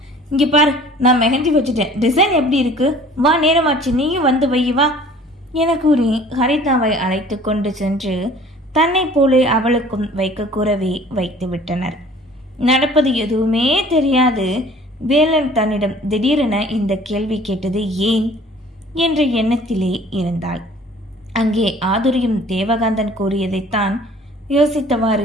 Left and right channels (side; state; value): both; normal; correlation 0.50